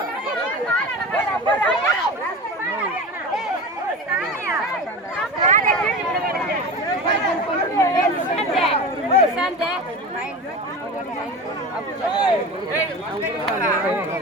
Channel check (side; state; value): both; normal; correlation 0.30